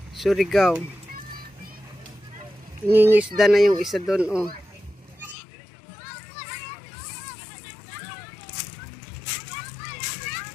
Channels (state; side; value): drops out; right; at 5.4 s